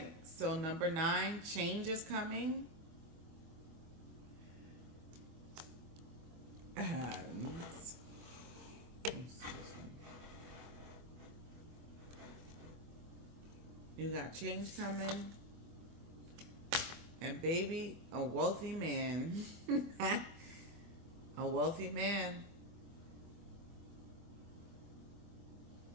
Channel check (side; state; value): left; late; 24 ms